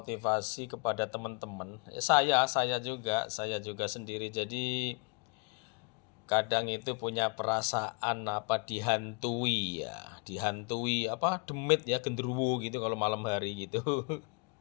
kepada teman-teman. Saya juga sendiri. Jadi kadang itu punya perasaan dihantui ya, dihantui demit ya, genderuwo gitu kalau malam hari gitu.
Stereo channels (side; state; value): right; quieter; 32.7 dB